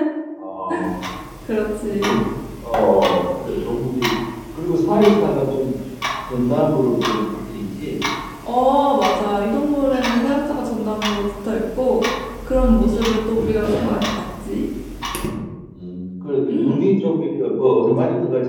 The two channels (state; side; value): identical; both; correlation 1.00